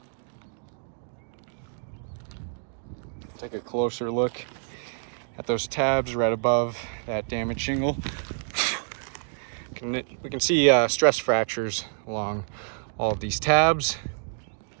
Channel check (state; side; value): silent; left; digital silence